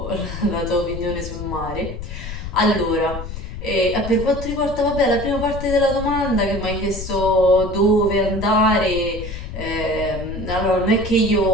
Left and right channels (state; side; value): noise; left; rumble, 8 dB below the sound